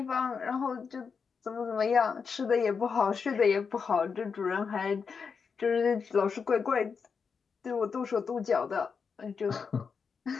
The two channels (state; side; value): quieter; right; 5.7 dB